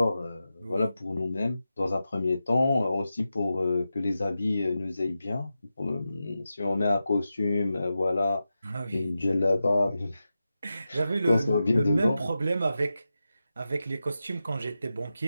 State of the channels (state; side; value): inverted; both; correlation -0.91